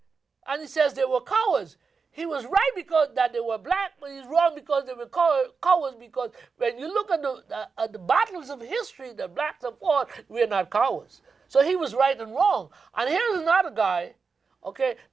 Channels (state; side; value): quieter; left; 5.0 dB